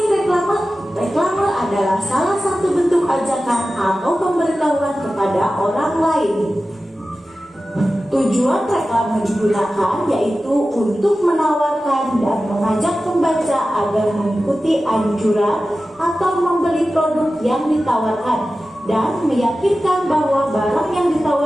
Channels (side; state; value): both; normal; correlation 0.94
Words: reklame? Reklame adalah salah satu bentuk ajakan atau pemberitahuan kepada orang lain. Tujuan reklame digunakan yaitu untuk menawarkan dan mengajak pembaca agar mengikuti anjuran atau membeli produk yang ditawarkan dan meyakinkan bahwa barang yang